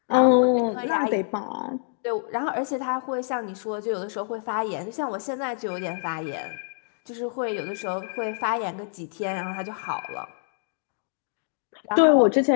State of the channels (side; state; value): right; silent; 61 dB below the other